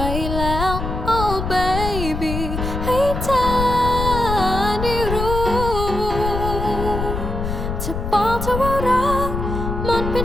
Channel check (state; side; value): noise; left; rumble, 4 dB below the sound